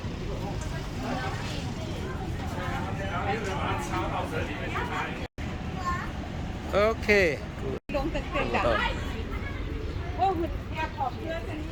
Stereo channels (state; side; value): identical; both; correlation 1.00